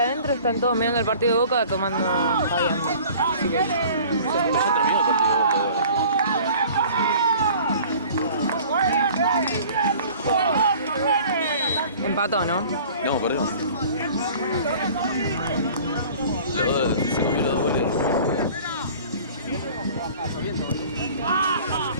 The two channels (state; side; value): inverted; both; correlation -0.47